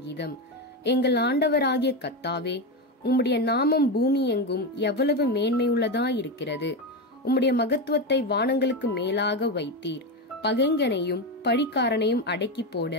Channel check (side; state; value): both; normal; correlation 0.14